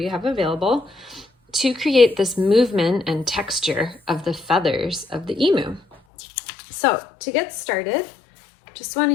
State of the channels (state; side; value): drops out; right; at 6.0 s